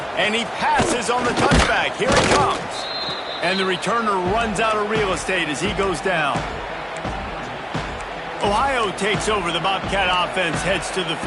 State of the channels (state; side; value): identical; both; correlation 1.00